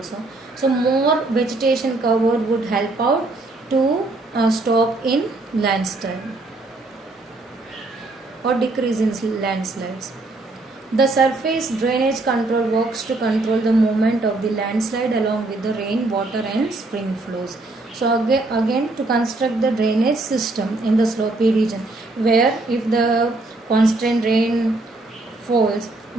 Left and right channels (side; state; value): left; quieter; 3.0 dB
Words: So more vegetation cover would help out to stop in landslide or decrease in landslides. The surface drainage control works to control the movement of the landslide along with the rain, water and spring flows. So again to construct the drainage system in the slopy region, where if the constant rain falls,